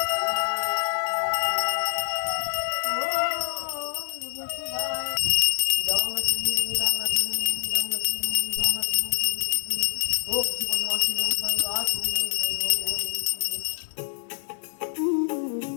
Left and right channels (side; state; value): right; silent; digital silence